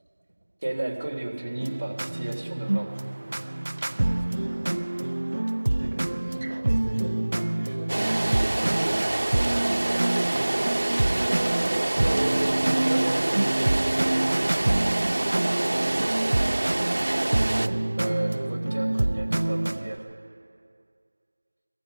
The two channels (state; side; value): inverted; both; correlation -1.00